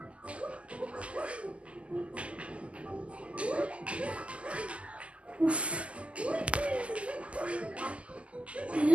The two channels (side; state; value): left; late; 0.058 ms